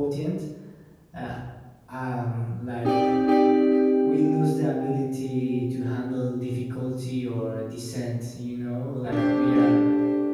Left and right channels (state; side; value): identical; both; correlation 1.00